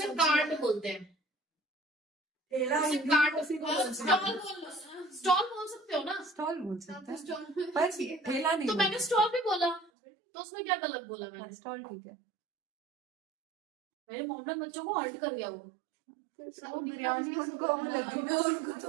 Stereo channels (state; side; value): drops out; left; at 9.9 s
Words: कार्ट बोलते हैं। ठेला उसे कार्ट, स्टॉल बोल सकते हो ना? स्टॉल बोल सकते हैं पर ठेला नहीं। तो मैंने स्टॉल भी बोला, तो उसमें क्या गलत बोला मैंने? स्टॉल ठीक है। मेरे मोहम्मद बच्चों को हर्ट कर गया वो। बिरयानी उनको तो